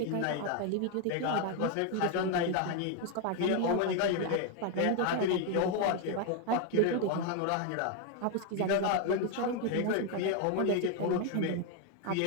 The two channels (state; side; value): different; both; correlation 0.01